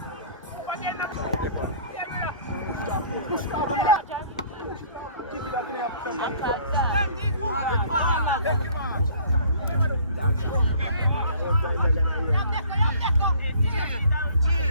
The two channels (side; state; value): both; inverted; correlation -0.53